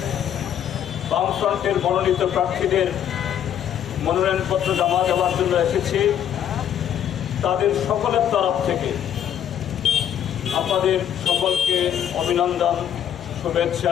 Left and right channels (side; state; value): right; quieter; 9.7 dB